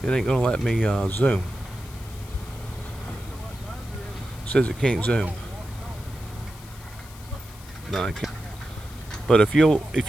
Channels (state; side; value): noise; left; hiss, 20 dB below the sound